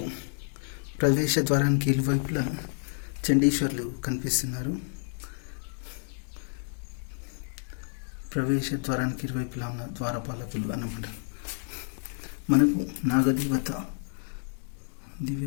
ప్రవేశ ద్వారానికి ఇరువైపులా చండీశ్వర్లు కనిపిస్తున్నారు. ప్రవేశ ద్వారానికి ఇరువైపులా ఉన్న ద్వారపాలకులు అన్నమాట. మనకు నాగదేవత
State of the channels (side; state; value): right; silent; digital silence